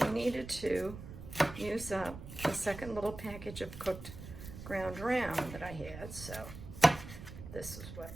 We needed to use up the second little package of cooked ground round that I had, so this is what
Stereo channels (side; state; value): right; noise; rumble, 12 dB below the sound